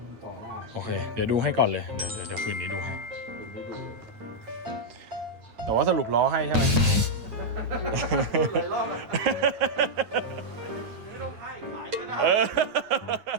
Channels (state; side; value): late; left; 9.3 ms